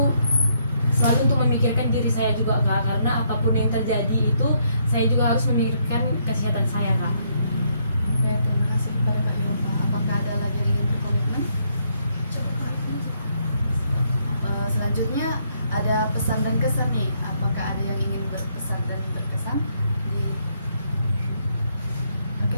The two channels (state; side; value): inverted; both; correlation -0.72